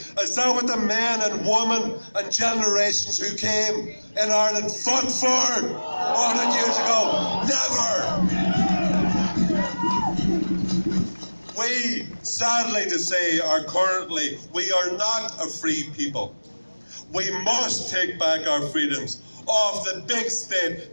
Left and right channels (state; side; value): inverted; both; correlation -1.00